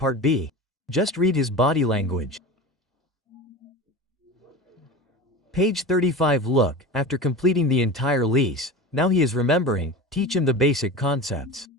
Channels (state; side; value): normal; both; correlation 0.30